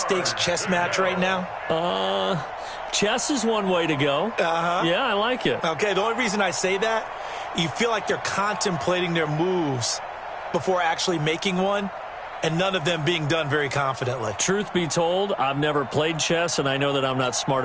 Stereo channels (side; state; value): both; identical; correlation 1.00